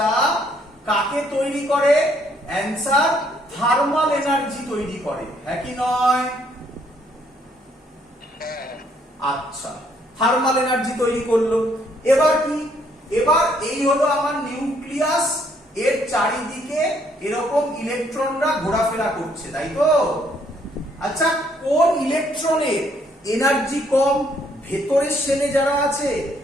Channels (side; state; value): both; normal; correlation 0.68